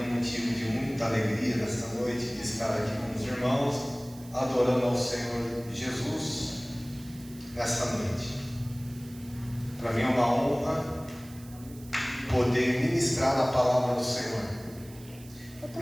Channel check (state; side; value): noise; right; hiss, 21 dB below the sound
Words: um motivo de muita alegria nesta noite de estar aqui com os irmãos, adorando ao Senhor Jesus nesta noite. Para mim é uma honra poder ministrar a palavra do Senhor,